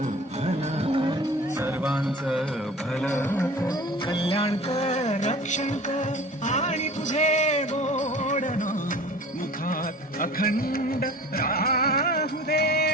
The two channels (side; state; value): both; normal; correlation 0.42